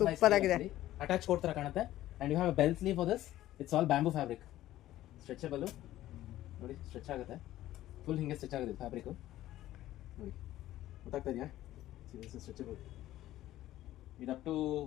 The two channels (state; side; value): quieter; right; 14.4 dB